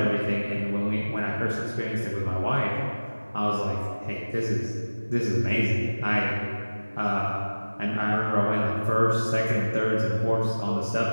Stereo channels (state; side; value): inverted; both; correlation -1.00